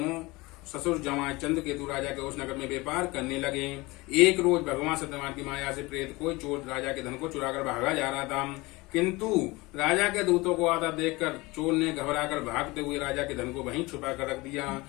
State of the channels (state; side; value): quieter; right; 22.7 dB